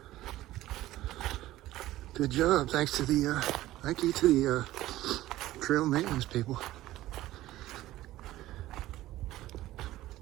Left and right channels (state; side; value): quieter; left; 15.6 dB